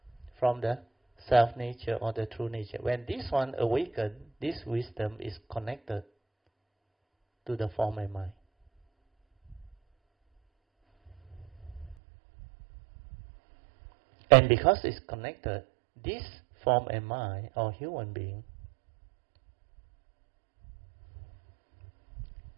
from the self-nature or the true nature. When this one awakens, this wisdom is connected to the form and mind. And because it's connected, this form and mind or human being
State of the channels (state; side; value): drops out; left; at 12.0 s